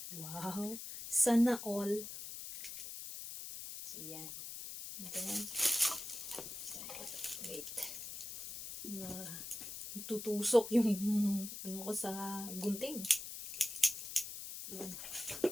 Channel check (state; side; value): noise; left; hiss, 8 dB below the sound